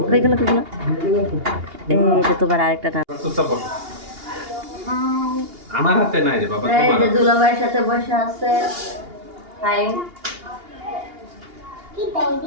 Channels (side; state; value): left; late; 2.8 ms